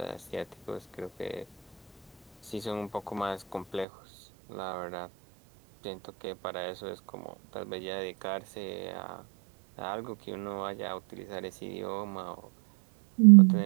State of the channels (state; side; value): drops out; left; at 3.9 s